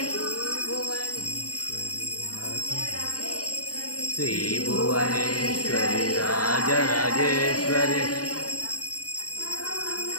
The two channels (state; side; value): late; right; 0.68 ms